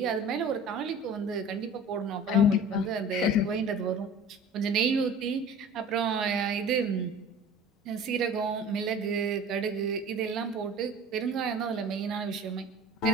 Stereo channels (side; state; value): both; normal; correlation 0.42